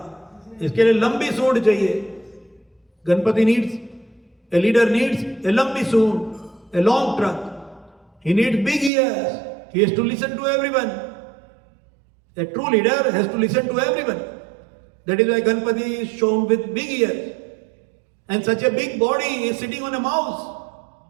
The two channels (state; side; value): drops out; left; at 8.9 s